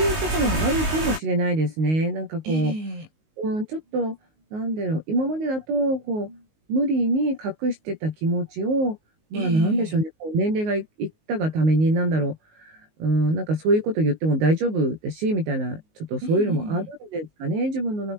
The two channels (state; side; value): late; left; 19 ms